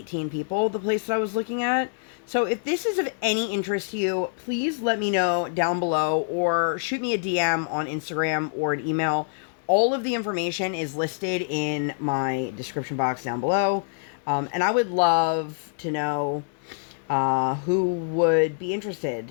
people, the place that I was looking at. So if this is of any interest to you, please let me know down below, or shoot me a DM on Instagram or an email. All of the information is listed in my description box down below. And I would love to know who would be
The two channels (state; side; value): silent; right; 61 dB below the other